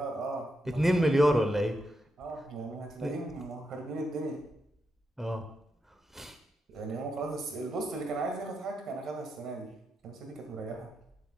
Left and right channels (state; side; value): normal; both; correlation 0.84